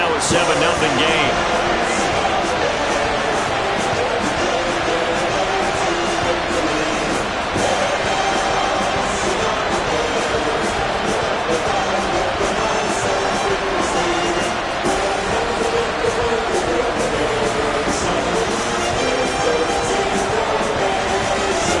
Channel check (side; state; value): both; identical; correlation 1.00